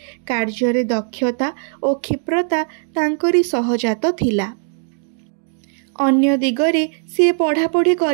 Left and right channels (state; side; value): silent; left; 59 dB below the other